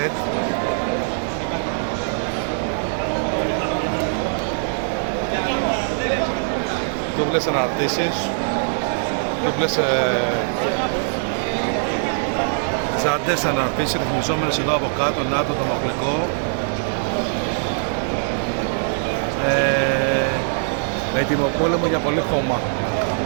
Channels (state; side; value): silent; left; 59 dB below the other